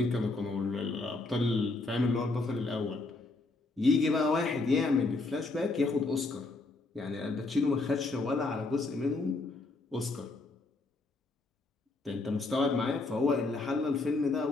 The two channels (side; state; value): right; quieter; 3.4 dB